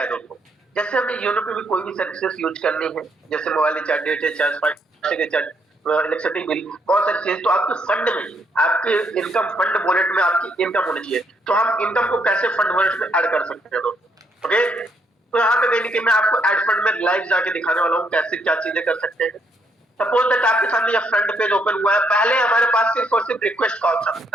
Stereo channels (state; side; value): normal; both; correlation 0.72